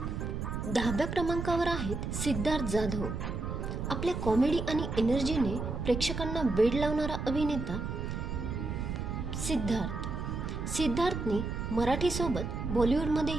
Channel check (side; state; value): right; noise; rumble, 4 dB below the sound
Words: 10व्या क्रमांकावर आहेत सिद्धार्थ जाधव. आपल्या कॉमेडी आणि एनर्जीने प्रेक्षकांना वेड लावणारा अभिनेता सिद्धार्थने मराठीसोबत